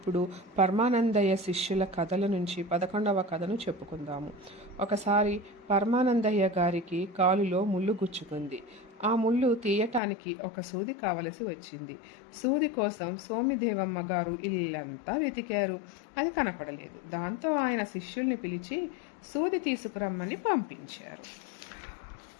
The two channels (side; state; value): right; drops out; at 10.0 s